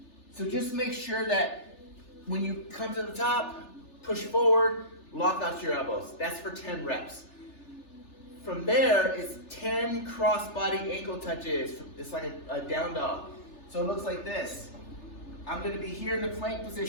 So just make sure that when you come to the top, push forward, lock out your elbows. That's for 10 reps. From there is 10 cross-body ankle touches. It's like a down dog. So it looks like this. I'm gonna be here in the plank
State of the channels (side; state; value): right; late; 3.4 ms